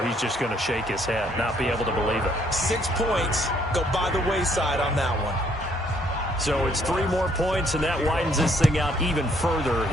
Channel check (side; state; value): both; normal; correlation 0.67